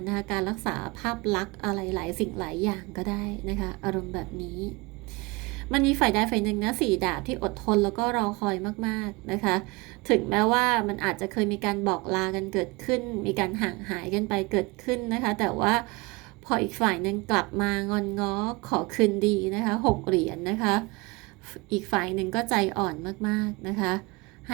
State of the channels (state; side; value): quieter; left; 25.4 dB